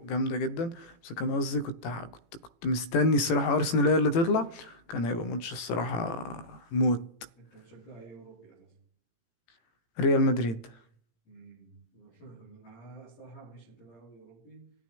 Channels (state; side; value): late; right; 17 ms